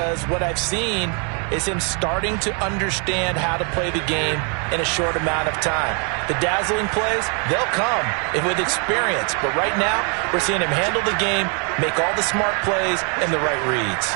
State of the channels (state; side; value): quieter; left; 37.6 dB